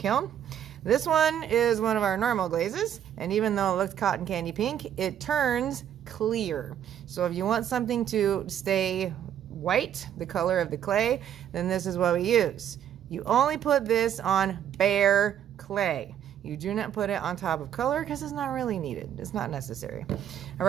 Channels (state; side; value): quieter; left; 10.0 dB